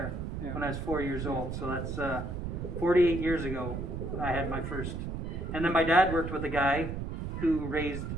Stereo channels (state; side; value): noise; right; rumble, 4 dB below the sound